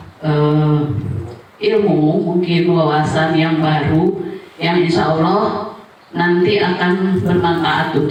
ilmu, mungkin wawasan yang baru yang insya Allah nanti akan bermanfaat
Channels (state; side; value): identical; both; correlation 1.00